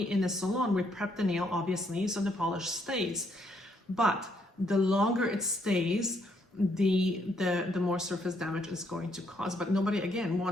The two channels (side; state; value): both; normal; correlation 0.72